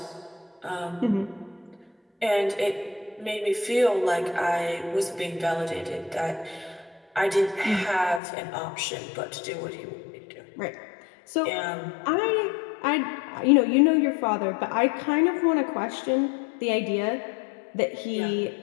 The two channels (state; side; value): drops out; right; at 8.2 s